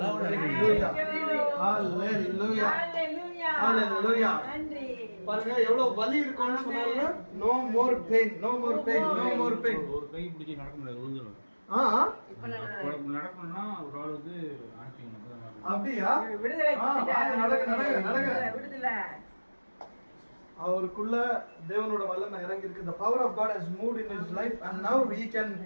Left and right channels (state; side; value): inverted; both; correlation -1.00